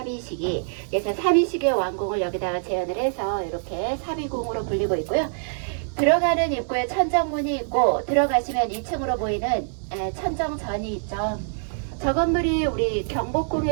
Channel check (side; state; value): left; silent; digital silence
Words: 그래서 사비시기의 왕궁을 여기다가 재현을 해서 이렇게 사비궁으로 불리고 있고요. 들어가는 입구에 천정문이 있고, 들어가시면 2층으로 보이는 천정전이 있죠. 저 건물이 우리